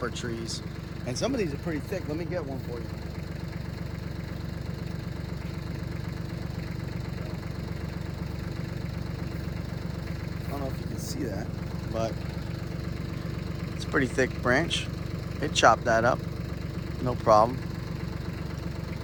trees. And some of these are pretty thick. Let me get one for you. I don't know if you can see that, but it's a pretty thick branch. It chopped that up, no problem.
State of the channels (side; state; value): both; identical; correlation 1.00